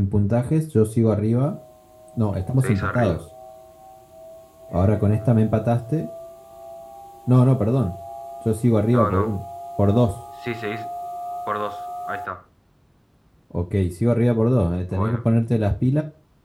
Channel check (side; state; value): both; identical; correlation 1.00